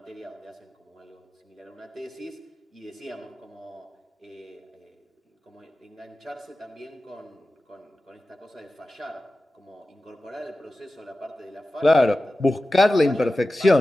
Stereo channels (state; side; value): normal; both; correlation 0.95